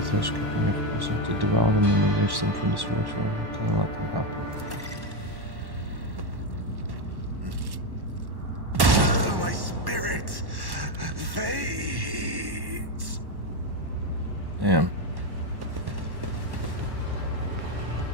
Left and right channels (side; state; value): left; late; 1.1 ms